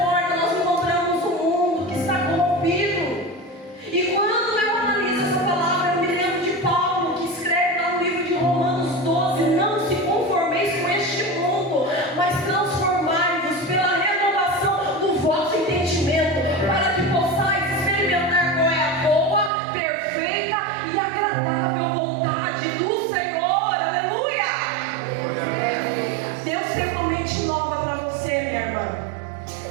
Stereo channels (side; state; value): left; drops out; at 19.5 s